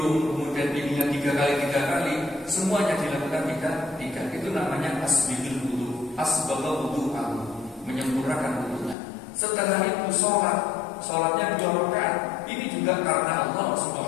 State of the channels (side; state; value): right; drops out; at 9.0 s